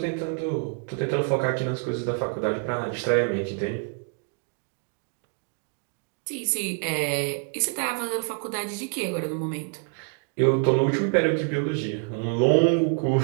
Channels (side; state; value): left; quieter; 39.7 dB